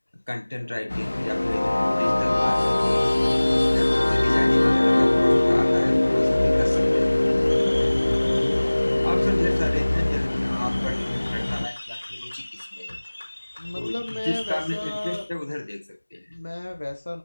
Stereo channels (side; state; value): both; inverted; correlation -1.00